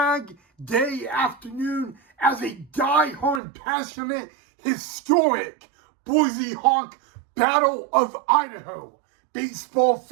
Day afternoon as a diehard passionate historic Boise Hawk Battle of Idaho baseball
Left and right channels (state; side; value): drops out; left; at 3.4 s